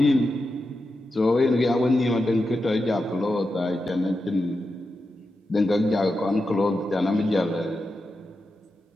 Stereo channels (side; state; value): both; normal; correlation 0.89